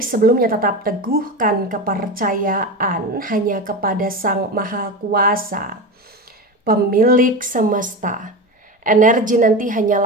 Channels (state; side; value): normal; both; correlation 0.23